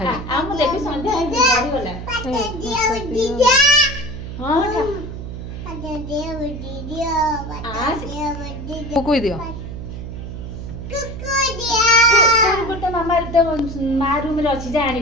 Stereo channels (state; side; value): noise; right; hum, 9 dB below the sound